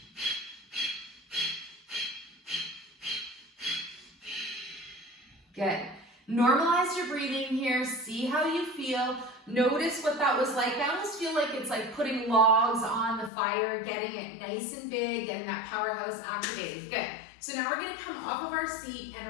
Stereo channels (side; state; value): right; drops out; at 13.3 s